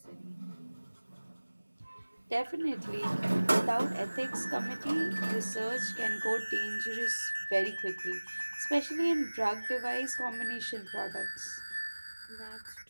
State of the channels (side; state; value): both; inverted; correlation -1.00